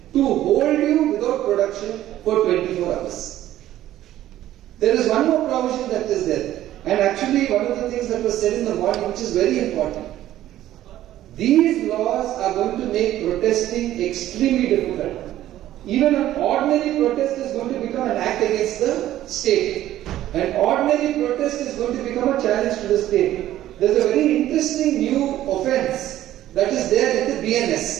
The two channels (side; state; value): left; quieter; 13.4 dB